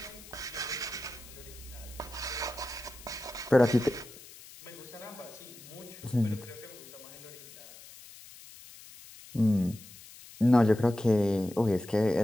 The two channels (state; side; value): noise; left; hiss, 19 dB below the sound